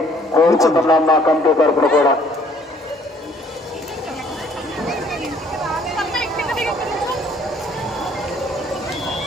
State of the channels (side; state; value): both; normal; correlation 0.60